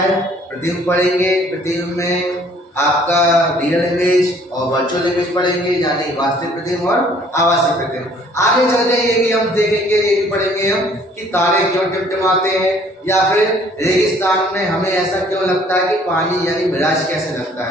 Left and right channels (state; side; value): normal; both; correlation 0.58